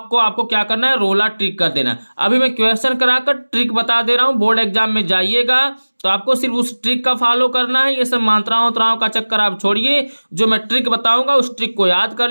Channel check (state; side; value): inverted; both; correlation -1.00